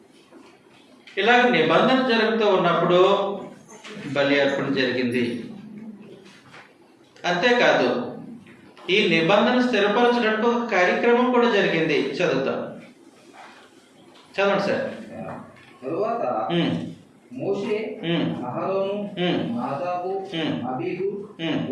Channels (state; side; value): identical; both; correlation 1.00